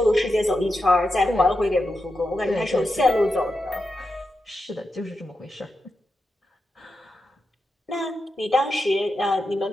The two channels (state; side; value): normal; both; correlation 0.88